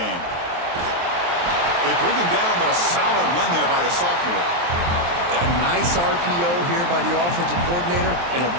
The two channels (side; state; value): left; late; 23 ms